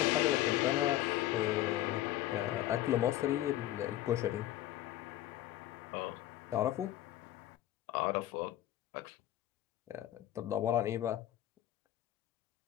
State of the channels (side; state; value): right; quieter; 13.7 dB